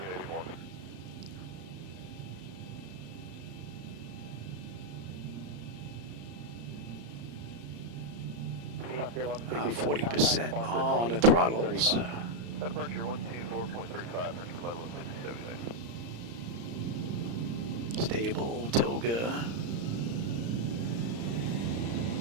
40% on the throttles. Departure 124.35, French Level 67. Stable, Toga.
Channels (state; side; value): late; left; 34 ms